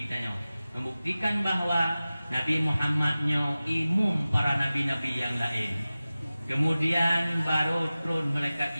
tanya. Membuktikan bahwa Nabi Muhammadnya imum para nabi-nabi yang lain. Kemudian baru turun malaikat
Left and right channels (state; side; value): inverted; both; correlation -0.96